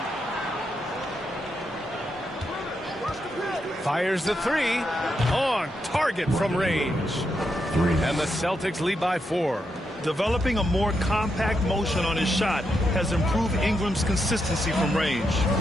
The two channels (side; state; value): both; normal; correlation 0.83